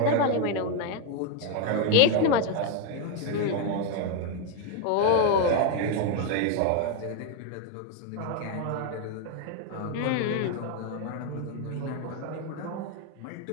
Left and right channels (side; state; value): both; different; correlation 0.01